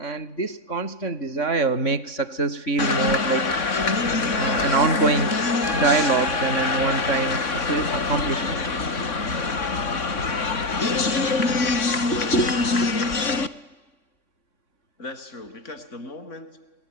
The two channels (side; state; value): right; late; 3.6 ms